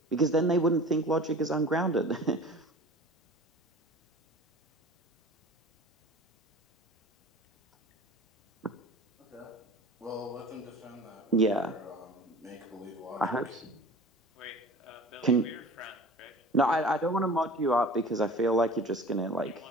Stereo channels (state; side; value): normal; both; correlation 0.41